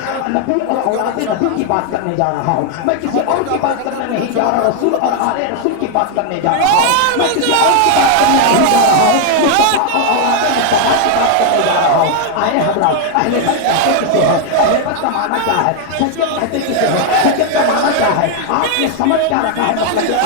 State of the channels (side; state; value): both; different; correlation 0.00